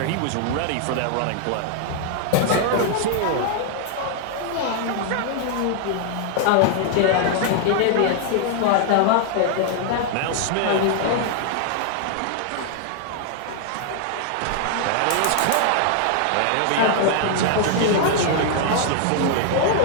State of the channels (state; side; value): different; both; correlation 0.00